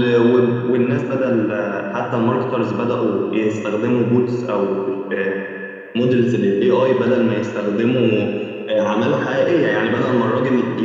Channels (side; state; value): both; identical; correlation 1.00